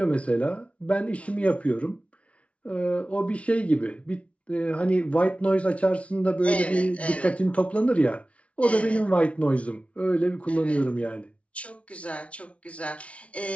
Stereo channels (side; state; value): right; late; 0.063 ms